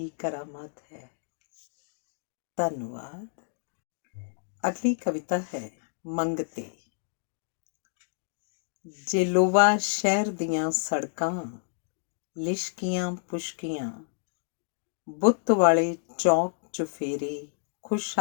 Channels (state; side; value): silent; right; digital silence